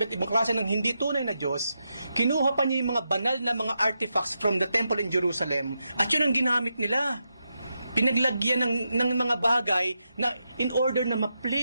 iba't ibang klase ng hindi tunay na Diyos, kinuha pa niya yung mga banal na mga artifacts from the temple in Jerusalem at yun ang ginamit nila. Pinaglagyan ng mga bagay na in order na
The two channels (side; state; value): both; inverted; correlation -0.86